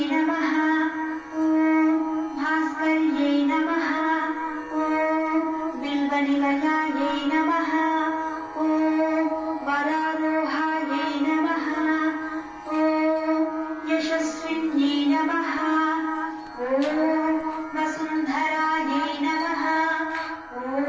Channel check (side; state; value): both; identical; correlation 1.00